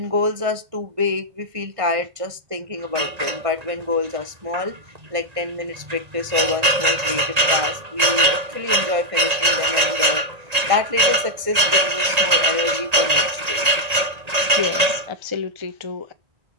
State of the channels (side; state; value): left; late; 1.8 ms